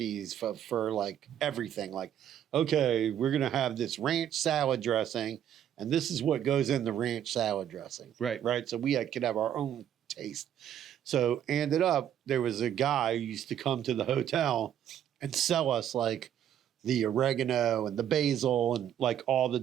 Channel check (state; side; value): quieter; left; 10.2 dB